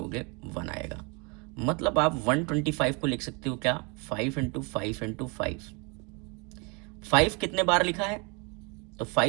1 आएगा। मतलब आप 125 को लिख सकते हो क्या, 5 इंटू 5 इंटू 5। 5 कितने बार लिखा है, तो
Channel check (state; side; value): quieter; left; 31.5 dB